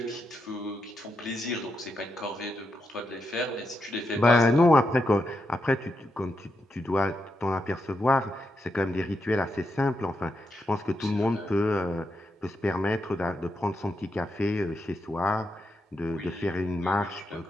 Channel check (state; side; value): normal; both; correlation 0.84